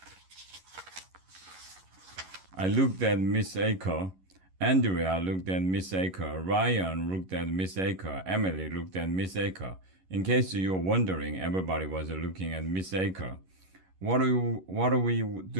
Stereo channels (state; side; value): late; left; 11 ms